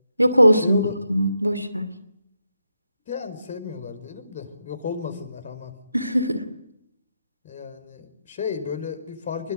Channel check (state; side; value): inverted; both; correlation -0.83